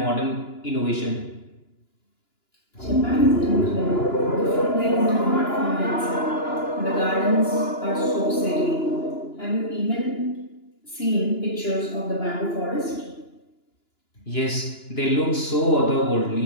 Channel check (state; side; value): late; right; 2.9 ms